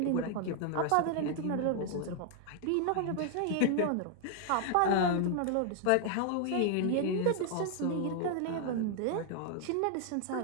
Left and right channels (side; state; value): both; different; correlation 0.00